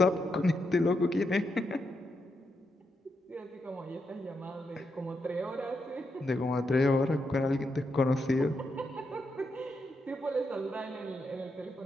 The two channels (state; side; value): normal; both; correlation 0.83